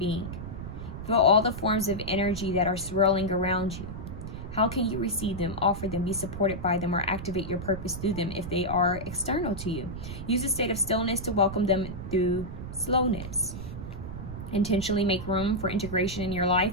Feel all the forms of energy that are swirling around you. How can you receive them, offer them, be supported by them, or activate your purpose through them if they are external to you? Use a state of stillness to welcome them through slowness. Intentionally make room for integration in your life,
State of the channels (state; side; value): noise; right; rumble, 8 dB below the sound